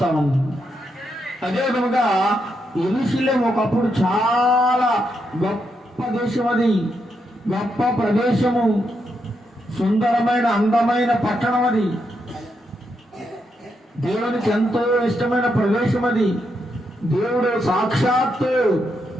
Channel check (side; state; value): both; normal; correlation 0.81